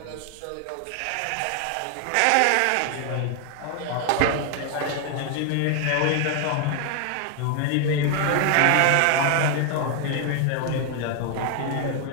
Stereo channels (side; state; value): both; different; correlation 0.00